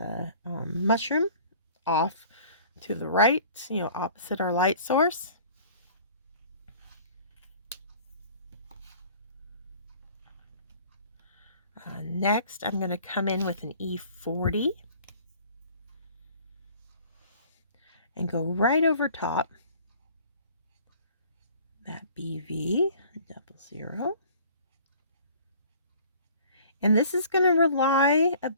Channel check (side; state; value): both; inverted; correlation -0.50